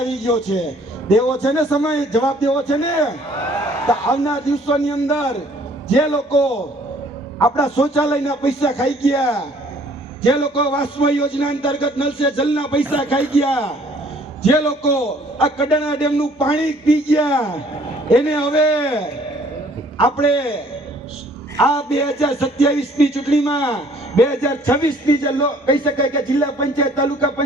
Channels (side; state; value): both; normal; correlation 0.58